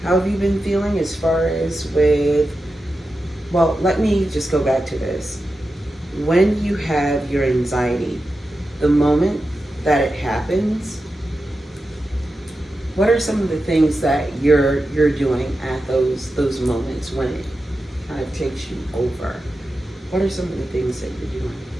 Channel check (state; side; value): normal; both; correlation 0.91